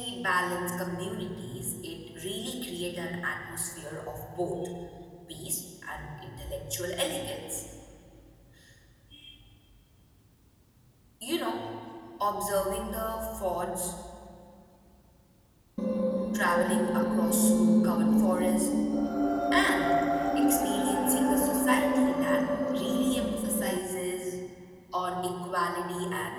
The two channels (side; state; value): both; identical; correlation 1.00